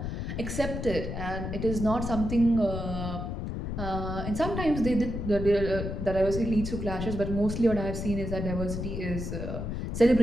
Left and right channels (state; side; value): noise; left; rumble, 4 dB below the sound